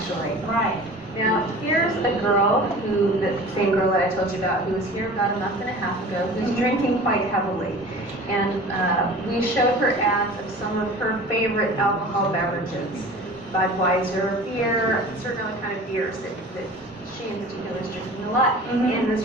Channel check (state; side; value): normal; both; correlation 0.40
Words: Right. Now, here's a girl the same girl that I told you about, who was here about a month and a half ago, who's drinking quite heavily. And we showed her ads of some of her favorite alcohol beverages. Budweiser beer, certain other kind of beers that she in particular is drinking a lot. In this